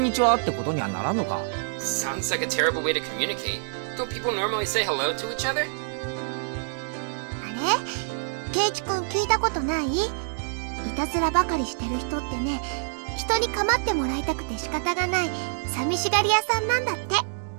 にちはってことにはならんのか。 Sounds like a terrible way to communicate. Don't people normally say hello to each other? あれ？ケイチ君聞いたことない？いたずらばかりしてる人ってね、人に構ってもらいたくて仕方がない寂しがり屋さんなんだって。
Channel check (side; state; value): left; silent; digital silence